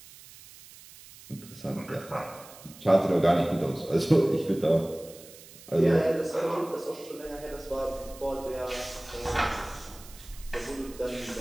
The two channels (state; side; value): noise; right; hiss, 19 dB below the sound